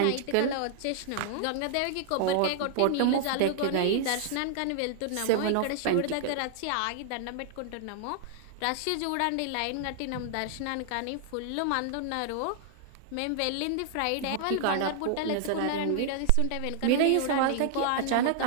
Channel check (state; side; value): different; both; correlation -0.01